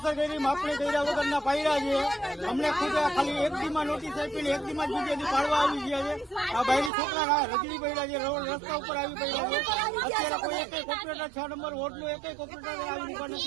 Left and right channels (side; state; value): left; drops out; at 6.9 s